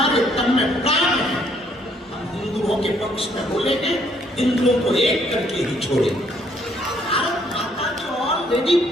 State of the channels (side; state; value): both; normal; correlation 0.67